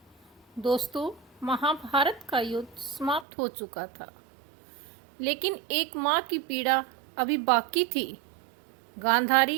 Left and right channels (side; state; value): left; drops out; at 3.2 s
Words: दोस्तों, महाभारत का युद्ध समाप्त हो चुका था, लेकिन एक माँ की पीड़ा अभी बाकी थी।